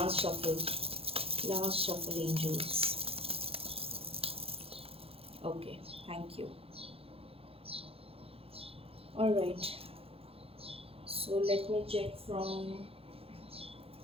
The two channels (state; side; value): late; left; 0.28 ms